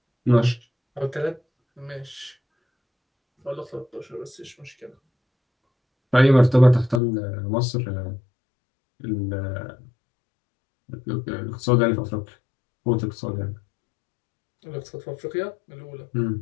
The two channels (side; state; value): right; drops out; at 7.0 s